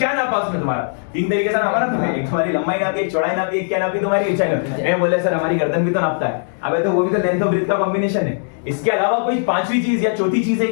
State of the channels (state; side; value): silent; right; digital silence